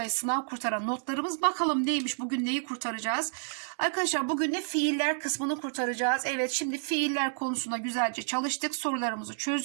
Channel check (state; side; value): silent; left; digital silence